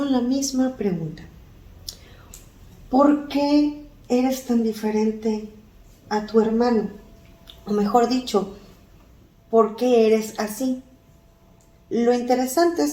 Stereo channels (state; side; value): identical; both; correlation 1.00